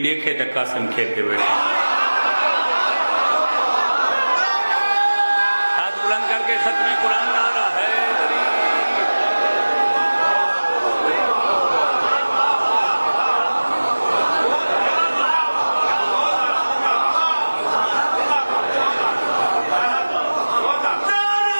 دیکھے تا قاسم کھیل کے بیٹھے. ہاتھ بلند کر کے ختم قرآن نعرہ ہے.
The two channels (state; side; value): inverted; both; correlation -1.00